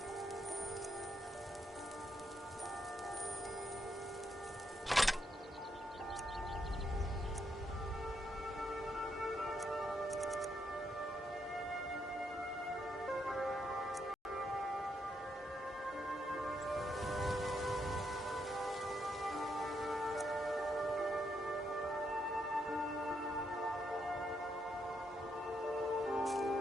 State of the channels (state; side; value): normal; both; correlation 0.78